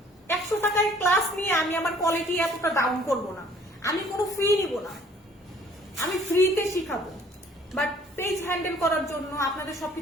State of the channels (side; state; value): both; normal; correlation 0.56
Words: 100 টাকায় ক্লাস নিয়ে আমি আমার কোয়ালিটি এতটা ডাউন করব না, আমি কোনো ফি নিব না, আমি ফ্রিতে শিখাবো। বাট পেজ হ্যান্ডেল করার জন্য, আপনাদের